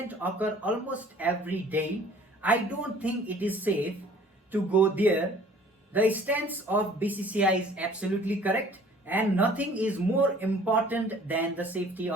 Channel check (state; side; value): normal; both; correlation 0.52